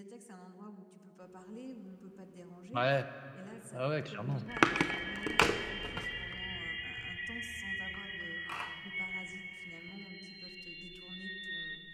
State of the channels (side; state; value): both; identical; correlation 1.00